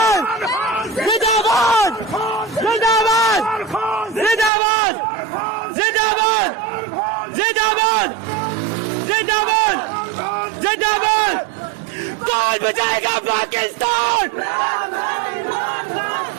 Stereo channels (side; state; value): left; drops out; at 4.5 s